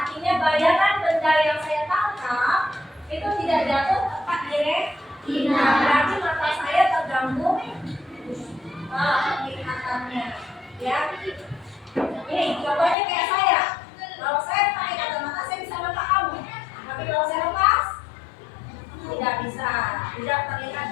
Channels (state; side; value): drops out; right; at 13.0 s